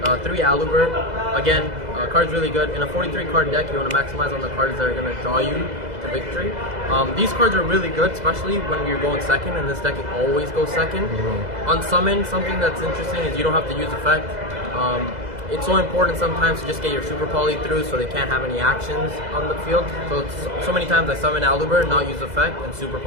3 Aluber. Again, card's really good. In a 43 card deck, you want to maximize on the cards that are going to draw you to victory. These cards are really good, especially when you're going second, and this deck always goes second. On summon, something that's interesting is you don't have to use effect. It's so important sometimes to just get your super poly through so they can't have any actions on the field. So many times I summon Aluber, not use effect, and super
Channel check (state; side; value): late; left; 2.0 ms